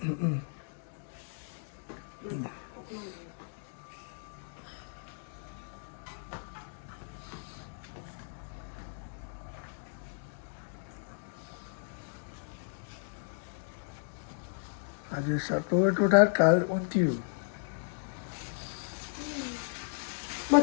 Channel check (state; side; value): silent; right; digital silence